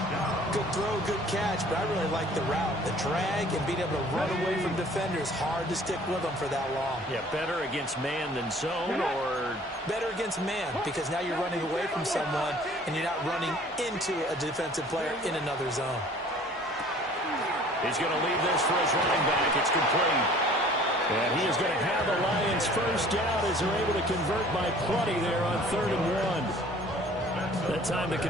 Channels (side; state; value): both; normal; correlation 0.51